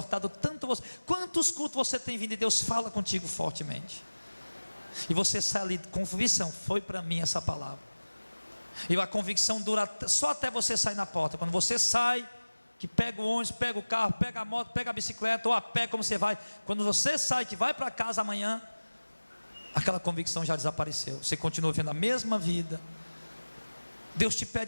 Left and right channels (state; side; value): inverted; both; correlation -1.00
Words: tanto você. Quantos cultos você tem vindo e Deus fala contigo fortemente? E você sai ali com convicção, foi para mim essa palavra. E a convicção dura só até você sair na porta. Quando você sai, que pega o ônibus, pega o carro, pega a moto, pega a bicicleta, ou a pé, como você vai. Quando você sai, que vai para casa amanhã, aquela convicção já desapareceu. Você continua vivendo a mesma vida. Deus te